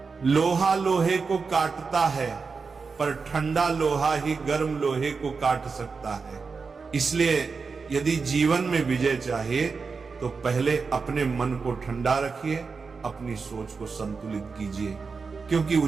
लोहा लोहे को काटता है, पर ठंडा लोहा ही गर्म लोहे को काट सकता है। इसलिए यदि जीवन में विजय चाहिए तो पहले अपने मन को ठंडा रखिए, अपनी सोच को संतुलित कीजिए, क्योंकि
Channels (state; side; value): quieter; left; 4.9 dB